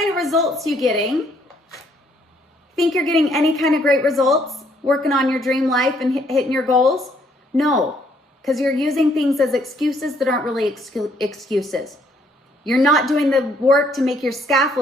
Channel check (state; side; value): normal; both; correlation 0.67